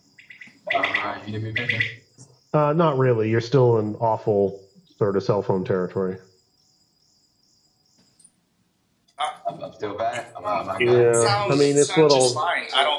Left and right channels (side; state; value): both; identical; correlation 1.00